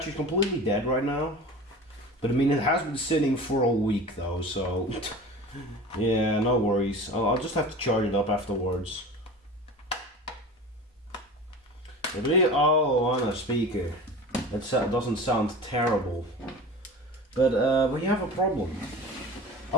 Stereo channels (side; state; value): both; normal; correlation 0.35